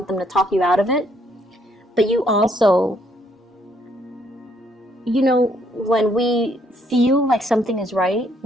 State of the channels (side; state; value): both; normal; correlation 0.69